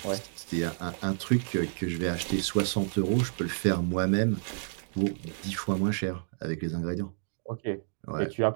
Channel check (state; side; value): silent; left; digital silence